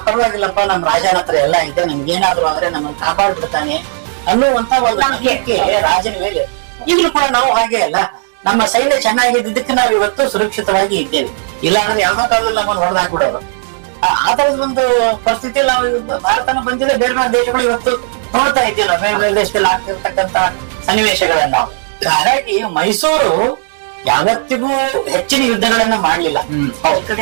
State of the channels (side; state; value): left; silent; 71 dB below the other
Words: ಪರವಾಗಿಲ್ಲಪ್ಪ, ನಮ್ ರಾಜನ ಹತ್ರ ಎಲ್ಲ ಇದೆ, ನಮ್ಗೆ ಏನಾದ್ರು ಅಂದ್ರೆ ನಮ್ಮನ್ನ ಕಾಪಾಡ್ಬಿಡ್ತಾನೆ ಅನ್ನುವಂತ ಒಂದು ನಂಬಿಕೆ ರಾಜನ ಮೇಲೆ. ಈಗಲೂ ಕೂಡ ನಾವು ಹಾಗೆ ಅಲ್ಲ, ನಮ್ಮ ಸೈನ್ಯ ಚೆನ್ನಾಗಿದ್ದಕ್ಕೆ ನಾವು ಇವತ್ತು ಸುರಕ್ಷಿತವಾಗಿ ಇದ್ದೇವೆ. ಇಲ್ಲ ಅಂದ್ರೆ ಯಾವ್ದೋ ಕಾಲದಲ್ಲಿ ನಮ್ಮನ್ನು ಹೊಡೆದಾಕ್ಬಿಡೋರು. ಆ ತರದ ಒಂದು ಪರಿಸ್ಥಿತಿಯಲ್ಲಿ ನಾವು ಭಾರತನ ಬಂದಿಲ್ಲ, ಬೇರೆ ಬೇರೆ ದೇಶಗಳು ಇವತ್ತು ನೋಡ್ತಾ ಇದ್ದೀವಿ, ಬೇರೆ ಬೇರೆ ದೇಶದಲ್ಲಿ ಆಗ್ತಿರ್ತಕ್ಕಂತ ಸನ್ನಿವೇಶಗಳನ್ನ. ಹಾಗಾಗಿ ಮೈಸೂರು ಯಾವತ್ತಿಗೂ ಹೆಚ್ಚಿನ ಯುದ್ಧಗಳನ್ನ ಮಾಡ್ಲಿಲ್ಲ.